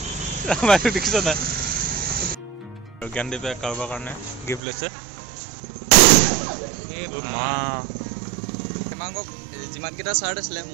আমাৰ দেখিছ নাই জ্ঞানদীপে কাৰোবাৰ কাৰণে গিফ্ট লৈছে মা হেমাংগক যিমানকেইটা চাৰ্ট আছিলে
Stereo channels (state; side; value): drops out; left; at 4.6 s